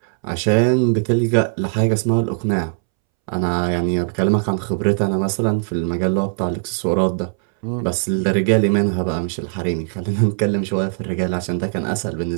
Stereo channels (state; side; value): silent; left; 65 dB below the other